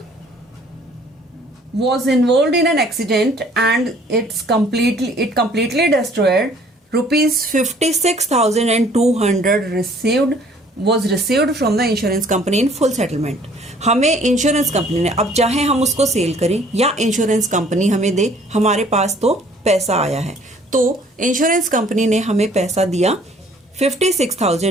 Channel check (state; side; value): normal; both; correlation 0.57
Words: was involved in an accident and it completely destroyed. Rupees 56,200 was received from the insurance company in full settlement. हमें insurance company ने, अब चाहे हम उसको cell करें या insurance company हमें दे, हमारे पास तो पैसा आया है, तो इंश्योरेंस कंपनी ने हमें पैसा दिया